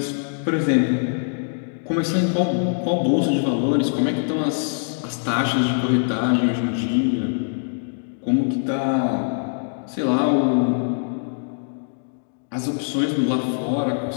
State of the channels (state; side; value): silent; right; digital silence